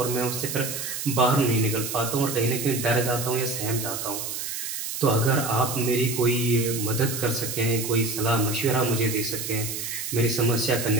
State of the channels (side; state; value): right; noise; hiss, 5 dB below the sound